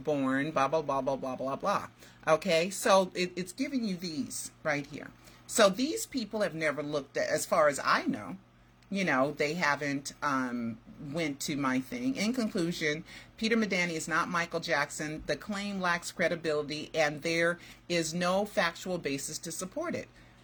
blah, blah, blah, blah, blah, blah, blah. Okay, so it's giving you these right here. So these people have never looked at, as far as I know, they haven't went to my thing. In conclusion, Peter Medani is not Michael Jackson. The claim lacks credibility, and there is no factual basis to support it.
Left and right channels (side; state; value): both; identical; correlation 1.00